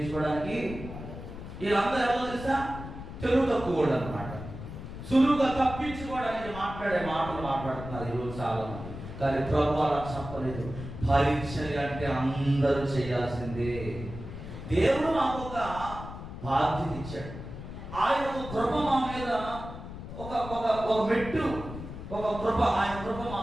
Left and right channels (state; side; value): noise; left; rumble, 10 dB below the sound